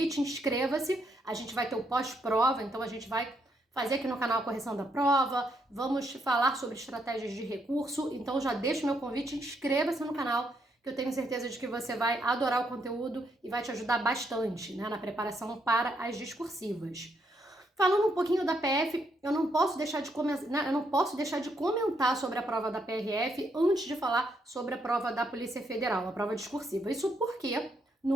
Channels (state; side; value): normal; both; correlation 0.76